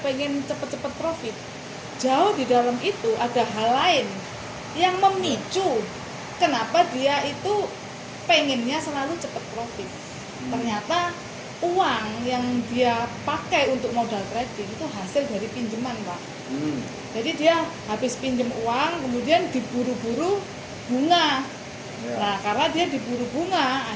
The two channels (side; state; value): both; identical; correlation 1.00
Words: cepet-cepet profit. Jauh di dalam itu ada hal lain yang memicu kenapa dia itu pengennya selalu cepat profit. Ternyata uang yang dia pakai untuk modal trading itu hasil dari pinjaman, Pak. Jadi dia habis pinjam uang, kemudian diburu-buru bunga. Ya. Nah, karena dia diburu bunga,